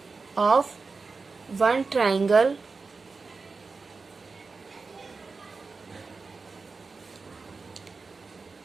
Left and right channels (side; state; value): left; quieter; 4.3 dB